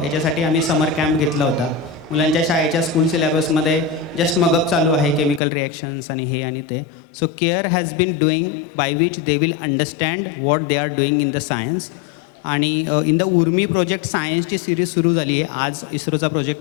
याच्यासाठी आम्ही समर कॅम्प घेतला होता. मुलांच्या शाळेच्या स्कूल सिलेबसमध्ये जस्ट मगअप चालू आहे, केमिकल रिॲक्शन्स आणि हे आणि ते. So care has been doing by which they will understand what they are doing in the science. आणि इन द उर्मी प्रोजेक्ट सायन्सची सिरीज सुरू झाली आहे. आज इस्रोचा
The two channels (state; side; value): drops out; right; at 5.4 s